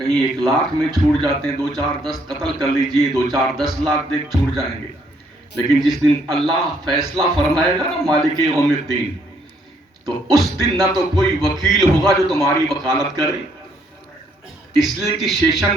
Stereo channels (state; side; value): normal; both; correlation 0.69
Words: 1 لاکھ میں چھوٹ جاتے ہیں. 2 4 10 قتل کر لیجئے، 2 4 10 لاکھ دیکھ چھوٹ جائیں گے. لیکن جس دن اللہ فیصلہ فرمائے گا نا، مالک یوم الدین، تو اس دن نہ تو کوئی وکیل ہوگا جو تمہاری وکالت کرے. اس لیے کہ